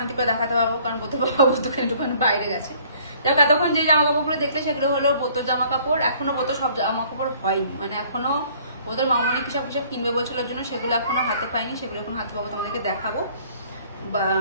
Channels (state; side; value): inverted; both; correlation -0.57